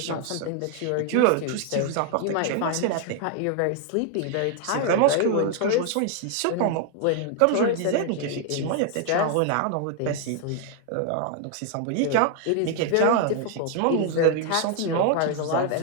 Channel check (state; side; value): different; both; correlation 0.00